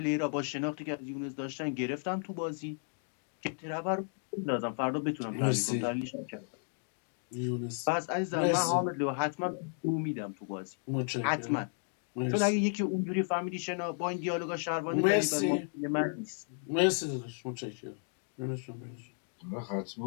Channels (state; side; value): silent; right; 55 dB below the other